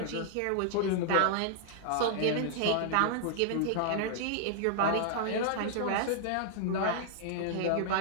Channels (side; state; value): both; different; correlation -0.01